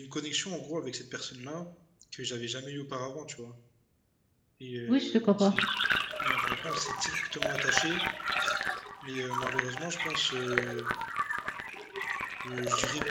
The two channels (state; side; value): identical; both; correlation 1.00